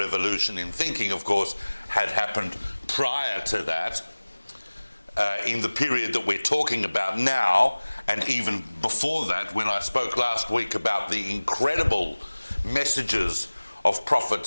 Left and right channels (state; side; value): inverted; both; correlation -1.00